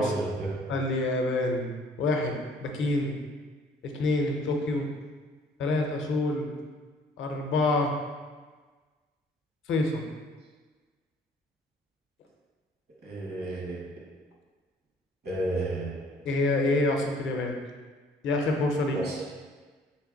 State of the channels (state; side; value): normal; both; correlation 0.57